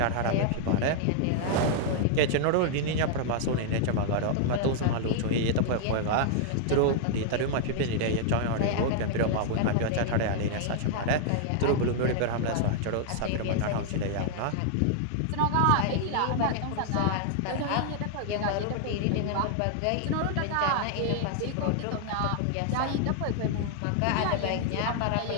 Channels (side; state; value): both; different; correlation -0.01